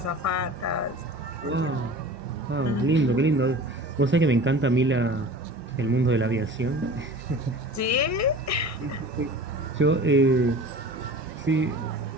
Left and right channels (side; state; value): both; normal; correlation 0.40